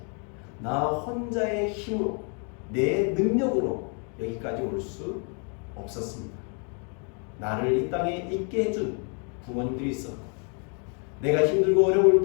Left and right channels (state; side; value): quieter; right; 39.7 dB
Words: 나 혼자의 힘으로, 내 능력으로 여기까지 올 수 없었습니다. 나를 이 땅에 있게 해준 부모님들이 있었고, 내가 힘들고 어려울